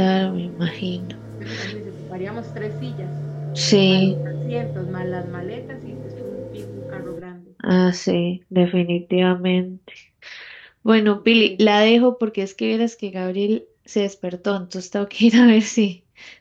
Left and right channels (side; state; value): both; identical; correlation 1.00